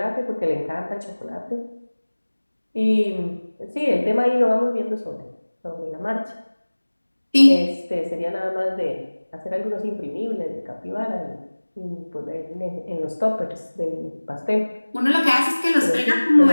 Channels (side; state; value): both; inverted; correlation -1.00